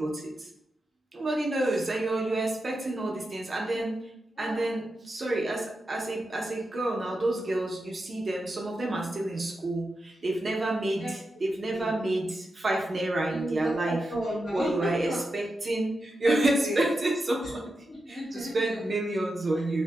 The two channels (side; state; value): both; normal; correlation 0.89